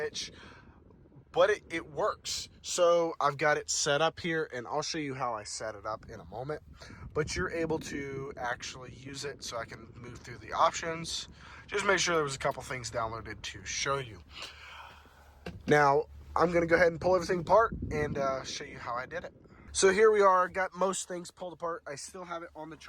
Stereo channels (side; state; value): both; identical; correlation 1.00